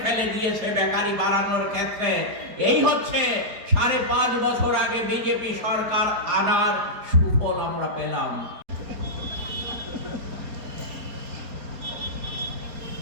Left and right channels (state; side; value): late; left; 4.6 ms